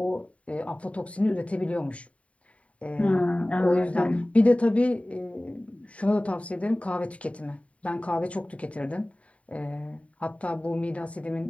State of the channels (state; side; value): late; right; 0.065 ms